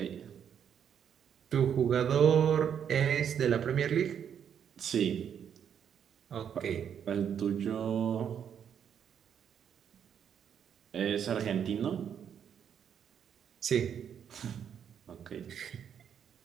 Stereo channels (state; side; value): quieter; left; 8.4 dB